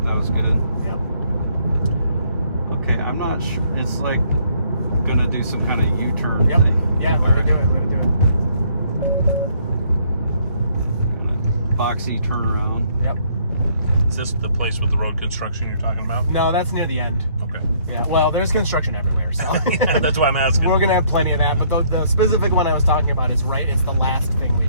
That was good. Yep. Okay, I'm not sure. It's like gonna do some kind of U-turn Yep. thing. Yeah, let it do it. Let it do it. Boxy turnaround. Yep. Is this the place with the road construction you're talking about? No, that's near the end. Okay. Yeah. Well, there's construction everywhere, so That's why I'm asking. we're gonna have plenty of that. But the specific one I was talking about is right. It's the last thing we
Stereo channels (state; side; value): inverted; both; correlation -0.65